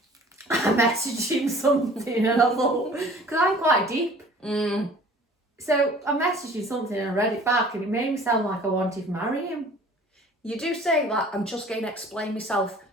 I messaged him something, and I thought, because I'm quite deep. Mm. So I messaged him something and I read it back, and it made me sound like I wanted to marry him. You do say that, I'm just going to explain myself.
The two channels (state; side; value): normal; both; correlation 0.49